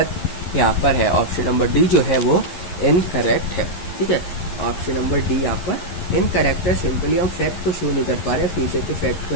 यहाँ पर है. ऑप्शन नंबर डी जो है वो इनकरेक्ट है. ठीक है, ऑप्शन नंबर डी यहाँ पर इनकरेक्ट है. सिंपली हम फैक्ट को शो नहीं कर पा रहे, फ्यूचर के फैक्ट को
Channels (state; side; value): late; right; 11 ms